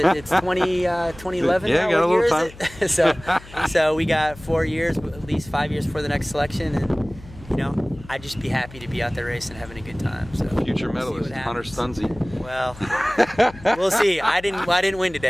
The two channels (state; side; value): noise; left; hum, 18 dB below the sound